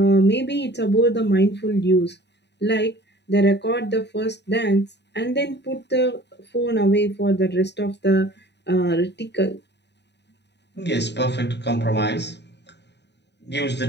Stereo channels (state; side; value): late; right; 0.50 ms